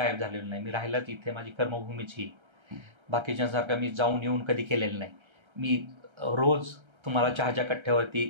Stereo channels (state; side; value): late; left; 1.3 ms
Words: झालेलो नाही. मी राहिलाच इथे, माझी कर्मभूमीच ही. बाकीच्यांसारखं मी जाऊन येऊन कधी केलेलं नाही. मी रोज तुम्हाला चहाच्या कट्ट्यावरती